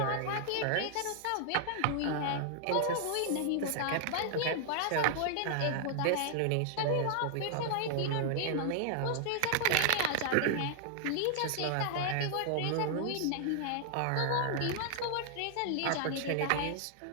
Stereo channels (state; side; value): different; both; correlation 0.00